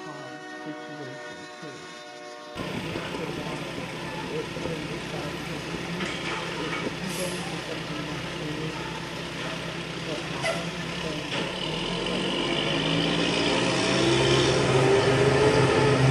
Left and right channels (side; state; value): both; identical; correlation 1.00